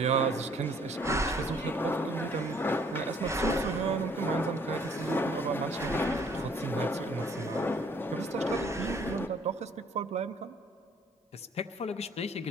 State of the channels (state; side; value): normal; both; correlation 0.60